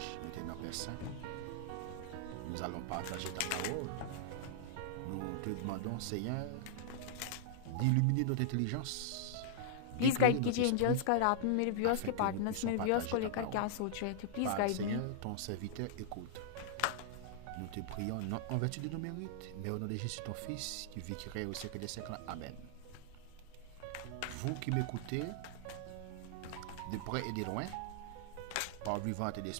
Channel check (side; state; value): both; different; correlation -0.01